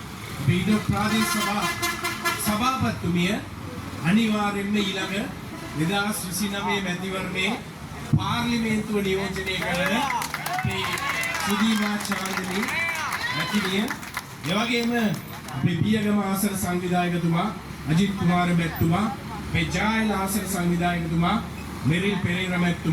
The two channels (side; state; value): both; identical; correlation 1.00